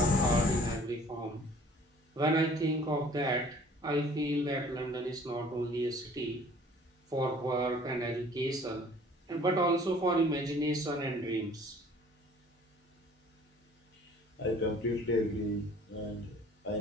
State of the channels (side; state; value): both; normal; correlation 0.53